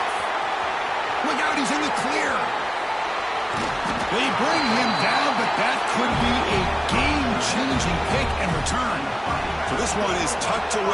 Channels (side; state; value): both; identical; correlation 1.00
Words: Look out, he's in the clear. They bring him down, but that could be a game-changing pick and return. So this one is tucked